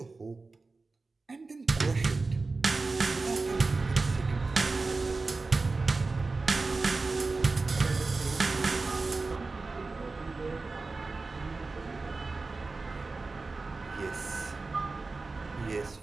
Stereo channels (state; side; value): quieter; left; 3.8 dB